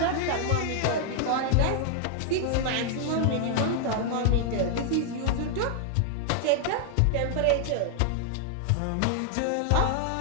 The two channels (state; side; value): different; both; correlation 0.00